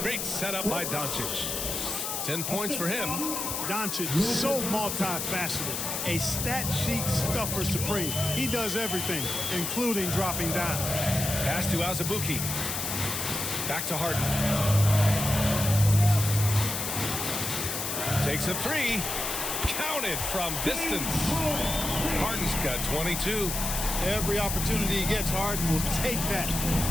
setup by Doncic. 10 points for him. Doncic, so multifaceted. A stat sheet stuffer supreme. He does everything, including dropping down. Pass to Azubuike. Back to Harden. Takes a 3. Counted from distance. Harden's got 22. Every opportunity he gets, Harden will take that.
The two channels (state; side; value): noise; left; hiss, 2 dB below the sound